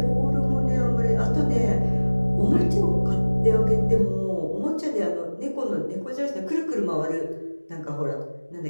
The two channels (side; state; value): both; inverted; correlation -1.00